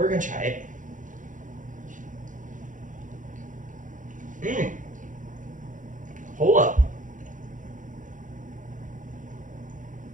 gonna try it. Hold up.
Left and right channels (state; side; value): late; left; 0.37 ms